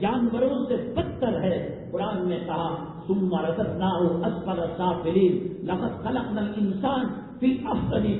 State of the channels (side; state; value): both; identical; correlation 1.00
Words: سے بدتر ہے. قرآن نے کہا ثم رددناہ اسفل سافلین لقد خلقنا الانسان فی احسن